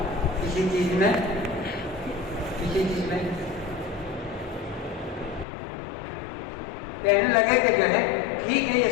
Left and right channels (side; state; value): right; drops out; at 5.5 s